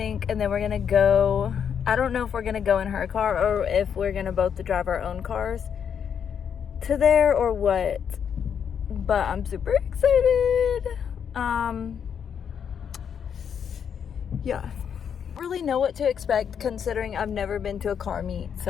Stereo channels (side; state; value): right; quieter; 7.7 dB